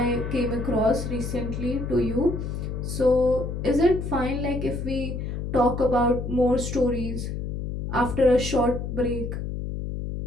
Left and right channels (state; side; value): noise; left; hum, 4 dB below the sound